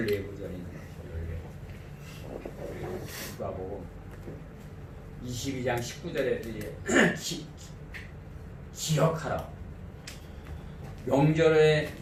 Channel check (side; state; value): both; identical; correlation 1.00